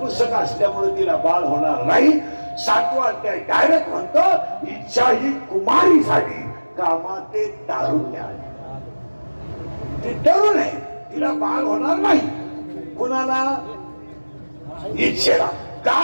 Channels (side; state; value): both; inverted; correlation -1.00